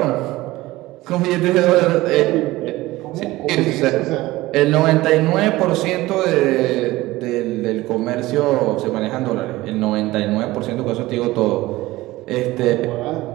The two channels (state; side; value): quieter; left; 18.5 dB